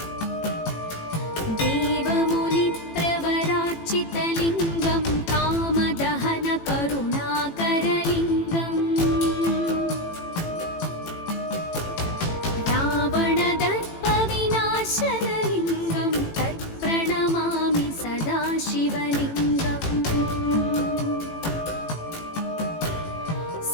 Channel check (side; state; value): right; late; 18 ms